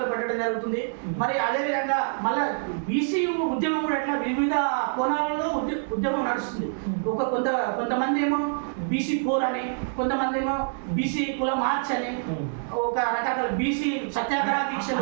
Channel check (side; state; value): left; silent; digital silence